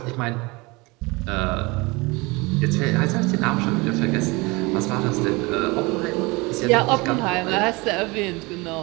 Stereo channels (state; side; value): quieter; left; 24.9 dB